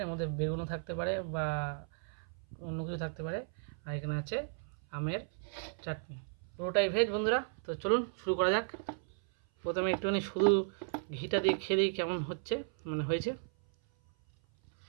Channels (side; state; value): left; silent; 55 dB below the other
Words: এর মধ্যে বেগুনও থাকতে পারে বা অন্য কিছু থাকতে পারে। আর এখানে আছে আমের চাটনি। পুরোটাই ভেজ বন্ধুরা। তো চলুন শুরু করা যাক। প্রথমে একটুখানি শুধু ঘিটা দিয়ে খেয়ে দিই কেমন হচ্ছে, মানে হয়েছে।